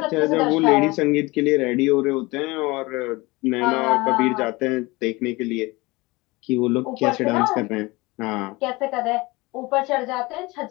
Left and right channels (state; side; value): quieter; right; 22.9 dB